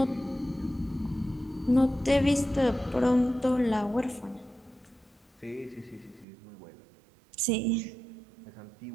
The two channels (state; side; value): drops out; left; at 6.2 s